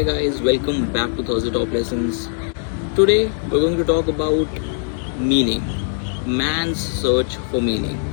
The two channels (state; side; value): silent; right; 55 dB below the other